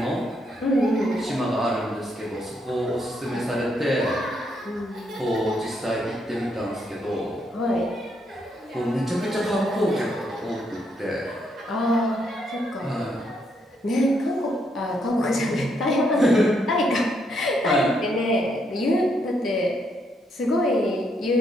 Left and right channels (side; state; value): both; normal; correlation 0.75